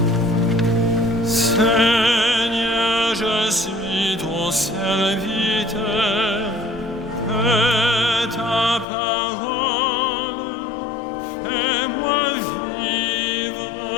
Seigneur, je suis ton serviteur, que ta parole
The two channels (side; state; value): right; drops out; at 8.8 s